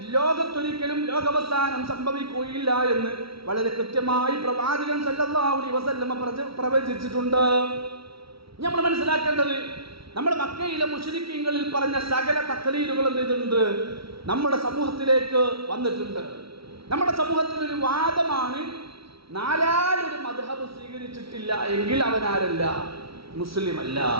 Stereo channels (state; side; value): late; left; 0.75 ms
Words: ലോകത്തൊരിക്കലും ലോകാവസാനം സംഭവിക്കുകയില്ല എന്ന് വളരെ കൃത്യമായി പ്രവാചകൻ സല്ലല്ലാഹു അലൈഹി വസല്ലമ പ്രവചിച്ചിട്ടുണ്ട്. നമ്മൾ മനസ്സിലാക്കേണ്ടത്, നമ്മുടെ മക്കയിലെ മുശ്രിക്കീങ്ങളിൽ പറഞ്ഞ സകല തഖ്ലീദുകളും ചെയ്തിട്ടുണ്ട്, നമ്മുടെ സമൂഹത്തിലേക്ക് വന്നിട്ടുണ്ട്. നമ്മുടെ സമൂഹത്തിൽ ഒരു വാദമാണ്, നാലാലൊരു മദ്ഹബ് സ്വീകരിച്ചിട്ടില്ല എങ്കിൽ അവനാരല്ല, മുസ്ലിം അല്ല.